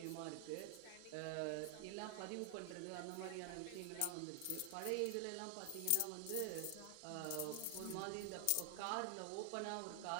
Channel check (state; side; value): different; both; correlation 0.00